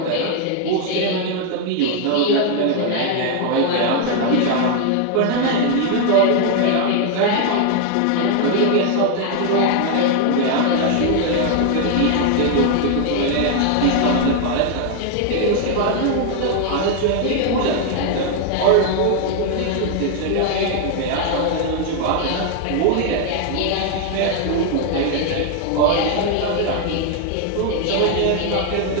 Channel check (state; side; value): different; both; correlation 0.00